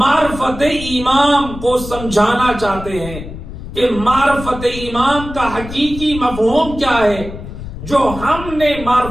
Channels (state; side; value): noise; left; rumble, 11 dB below the sound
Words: امام کو سمجھانا چاہتے ہیں کہ معرفت امام کا حقیقی مفہوم کیا ہے۔ جو ہم نے